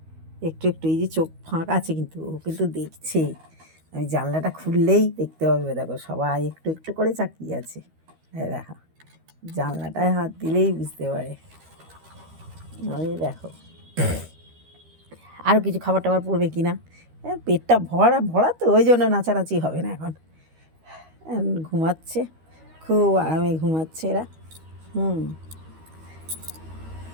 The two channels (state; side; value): late; left; 13 ms